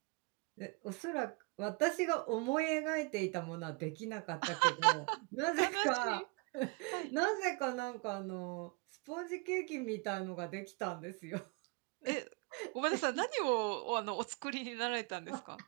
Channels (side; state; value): left; quieter; 29.6 dB